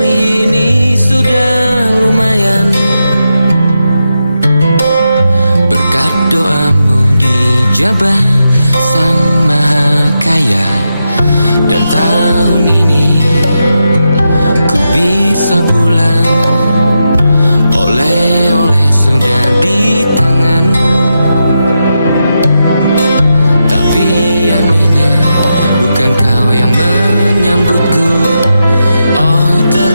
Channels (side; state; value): both; inverted; correlation -0.87